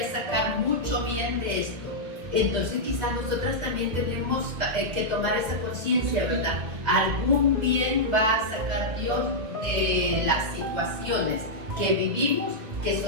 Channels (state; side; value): late; left; 2.2 ms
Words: sacar mucho bien de esto. Entonces quizás nosotras también tenemos que tomar esa conciencia, ¿verdad? Algún bien va a sacar Dios de las situaciones que vivimos, que